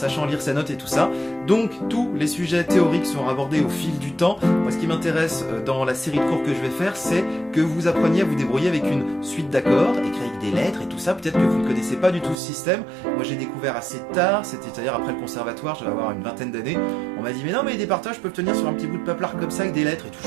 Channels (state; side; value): drops out; left; at 12.4 s